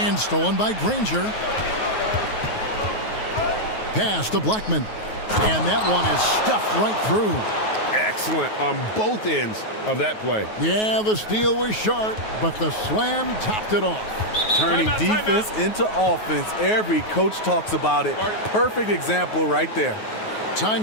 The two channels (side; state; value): right; late; 9.4 ms